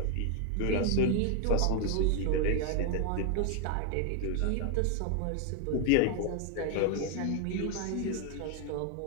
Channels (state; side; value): different; both; correlation 0.00